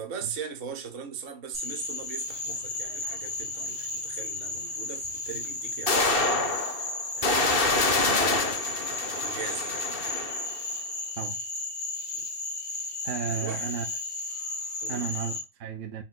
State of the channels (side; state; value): left; late; 2.7 ms